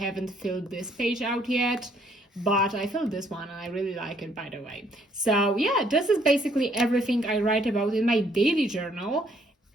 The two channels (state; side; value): normal; both; correlation 0.66